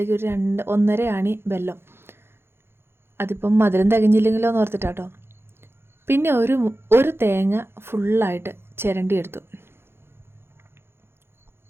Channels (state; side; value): late; left; 0.11 ms